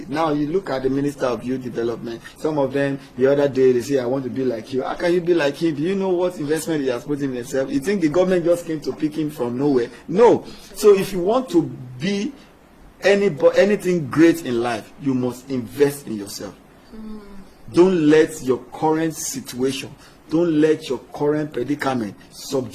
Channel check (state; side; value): identical; both; correlation 1.00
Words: now you look at the Minister of Youth Development, some of them, the other day, they say, I want to be like you. How can you be like him? Do you know what investment he has put in himself? You think the government just came to pick him from nowhere? No. So if you want to be anything great in life, you must invest in yourself. Don't let your current situation, don't let your current predicament